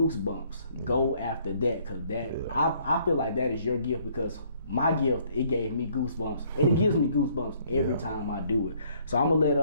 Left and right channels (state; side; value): inverted; both; correlation -0.63